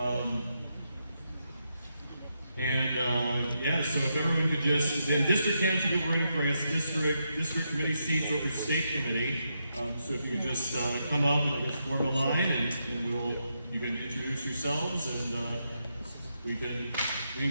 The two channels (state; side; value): inverted; both; correlation -0.83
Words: Yeah, so if everyone could just, then district candidates will be running for us, district committee seats over state committee. So if you could just come up and just form a line, and you can introduce yourselves, and we can